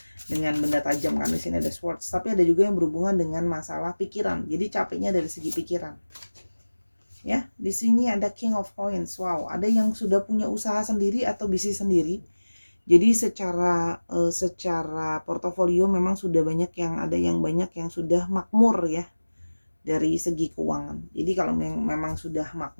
dengan benda tajam kan. Di sini ada swords, tapi ada juga yang berhubungan dengan masalah pikiran. Jadi capeknya dari segi pikiran. Ya, di sini ada King of Coins. Wow, ada yang sudah punya usaha sendiri atau bisnis sendiri. Jadi secara portofolio memang sudah banyak yang ada, yang banyak yang sudah makmur ya dari segi keuangan. Jadi kalau memang sudah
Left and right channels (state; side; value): inverted; both; correlation -1.00